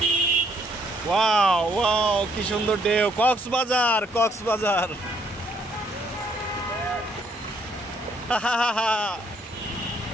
ওয়াও ওয়াও, কি সুন্দর ঢেউ! কক্সবাজার, কক্সবাজার।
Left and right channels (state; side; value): normal; both; correlation 0.67